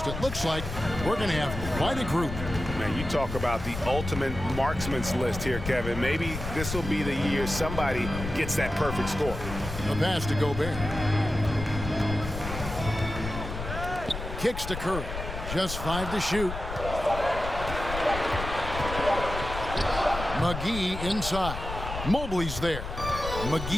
It looks like we're going to have quite a group. Man, you talk about the ultimate marksman's list here, Kevin. Maybe this will be the year somebody gets that perfect score. A pass to Gobert. Kicks to Curry. Just 5 to shoot. McGee inside. Mobley's there.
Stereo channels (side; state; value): left; noise; rumble, 7 dB below the sound